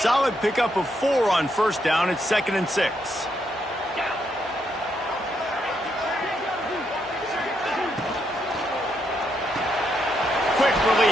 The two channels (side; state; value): both; normal; correlation 0.78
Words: pickup of 4 on first down. It's 2nd and 6. Quick